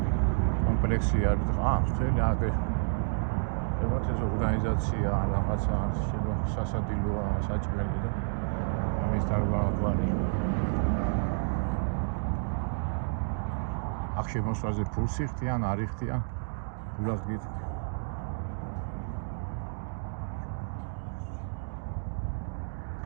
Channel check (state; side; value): silent; left; digital silence